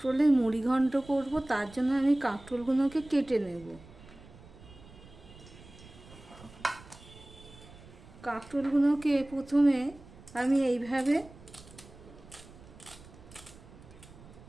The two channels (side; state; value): right; noise; rumble, 20 dB below the sound